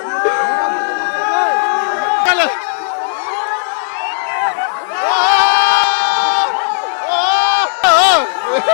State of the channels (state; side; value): silent; right; 70 dB below the other